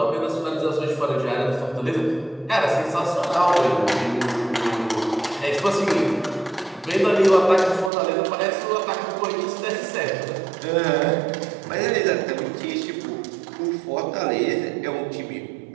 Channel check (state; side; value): drops out; left; at 7.9 s